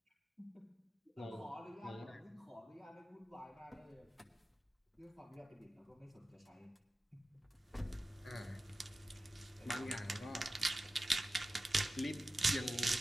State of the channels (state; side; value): normal; both; correlation 0.95